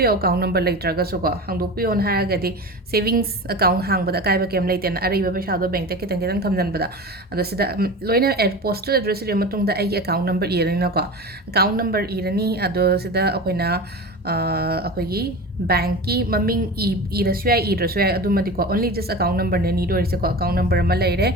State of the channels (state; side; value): normal; both; correlation 0.30